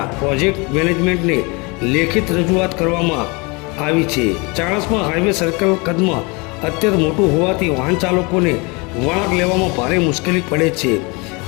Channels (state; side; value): quieter; right; 28.4 dB